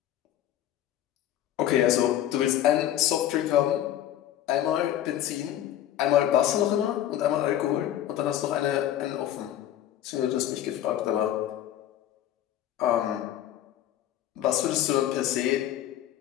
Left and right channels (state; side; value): quieter; right; 11.8 dB